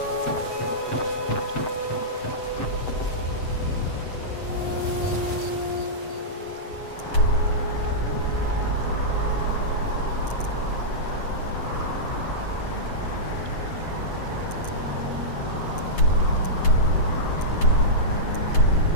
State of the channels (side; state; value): right; late; 7.8 ms